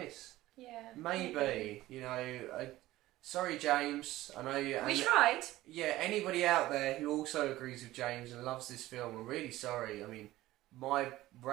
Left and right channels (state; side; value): quieter; left; 16.4 dB